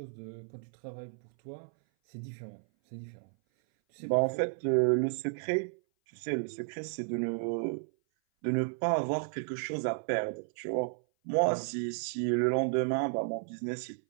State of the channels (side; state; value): left; silent; 56 dB below the other